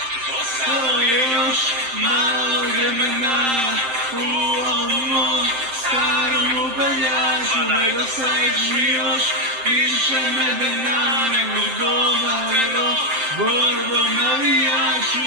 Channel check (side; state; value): left; late; 7.7 ms